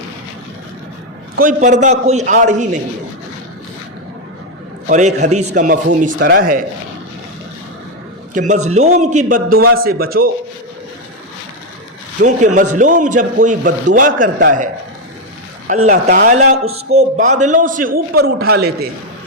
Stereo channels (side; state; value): both; normal; correlation 0.04